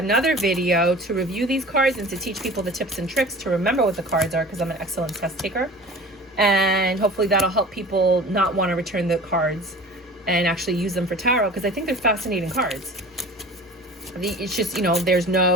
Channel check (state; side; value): normal; both; correlation 0.41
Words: video to review these cards and to teach people the tips and tricks to remember what the cards are, because I'm an excellent test taker. And hopefully that'll help people not want to return the cards and actually use them for tarot, because I think they're fascinating cards. It's just, you know, there's